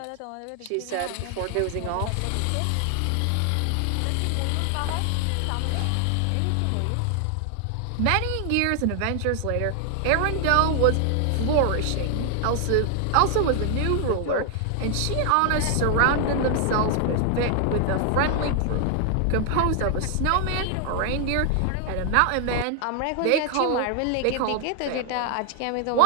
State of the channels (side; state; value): both; different; correlation 0.00